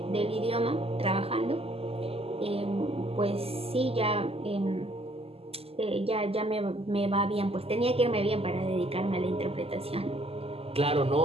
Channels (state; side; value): late; left; 0.29 ms